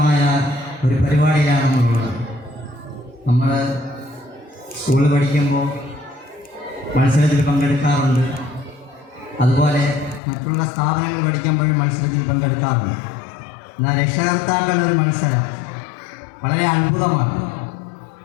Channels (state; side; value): drops out; right; at 10.2 s